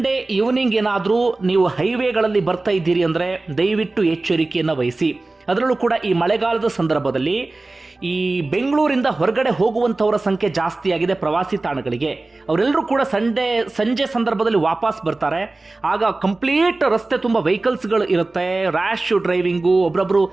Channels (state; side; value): quieter; left; 3.2 dB